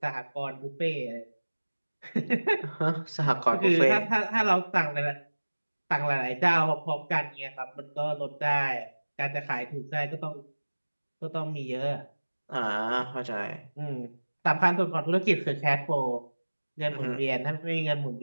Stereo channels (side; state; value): both; inverted; correlation -1.00